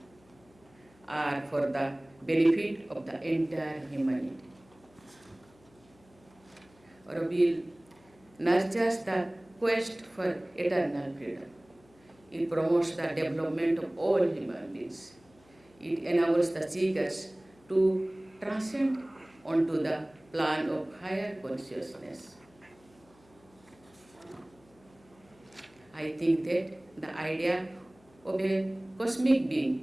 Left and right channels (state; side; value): noise; left; hum, 29 dB below the sound